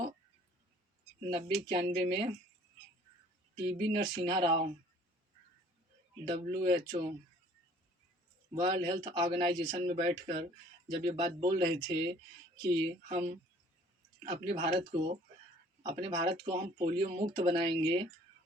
में TB Narasimha Rao WHO world health organization में बैठकर जब ये बात बोल रहे थे कि हम अपने भारत को हम पोलियो मुक्त बनाएंगे,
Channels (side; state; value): both; normal; correlation 0.55